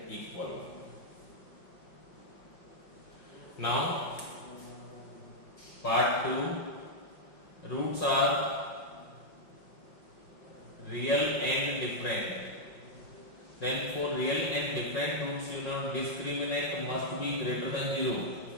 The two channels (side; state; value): right; late; 5.5 ms